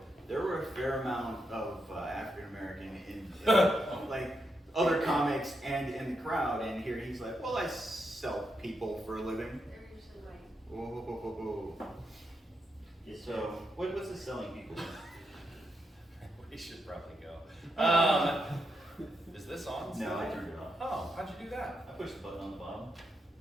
there were a fair amount of African American in like other comics and in the crowd, and here he's like, well, I sell people for a living. They're usually white. Whoa, whoa, whoa, whoa. So, what's the selling people? We should probably go. Is this on? No, I turned it off. Oh, how'd you do that? I pushed the button on the bottom.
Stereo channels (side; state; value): both; normal; correlation 0.83